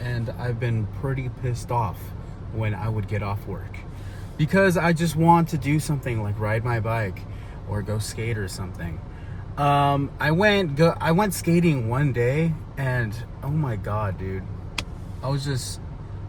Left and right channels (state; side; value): identical; both; correlation 1.00